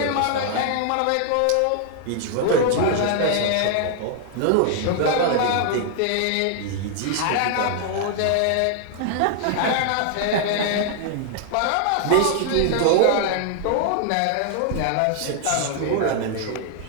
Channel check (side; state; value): both; different; correlation 0.00